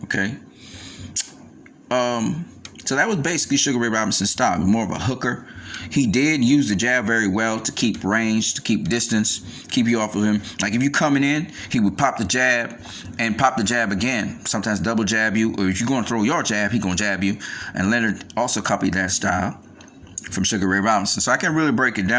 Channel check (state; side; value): identical; both; correlation 1.00